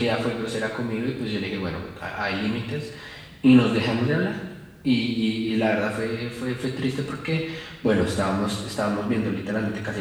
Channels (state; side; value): identical; both; correlation 1.00